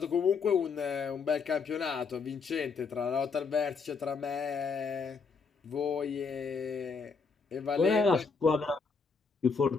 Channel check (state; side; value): quieter; right; 5.1 dB